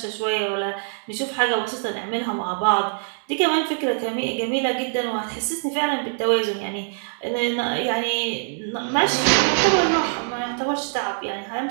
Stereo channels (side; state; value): left; silent; digital silence